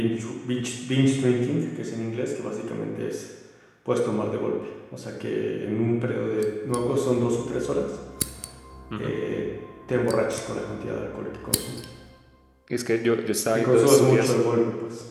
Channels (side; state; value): both; identical; correlation 1.00